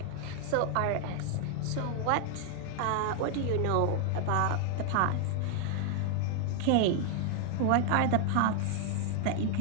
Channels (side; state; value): both; different; correlation 0.00